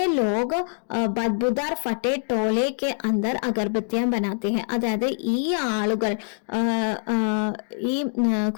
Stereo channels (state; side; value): silent; right; digital silence